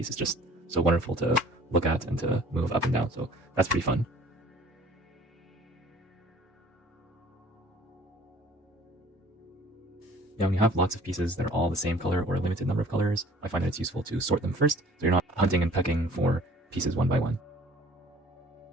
It's just so wonderful to look at and to move up and down, so that's pretty fun. Now, when you have lots of pieces that are all the same color or a limited number of colors, I find that it's useful to sort them first, so you're not hunting and pecking for pieces one by one.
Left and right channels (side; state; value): both; normal; correlation 0.52